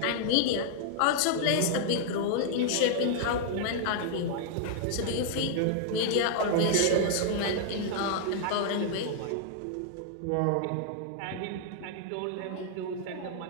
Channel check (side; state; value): both; different; correlation -0.01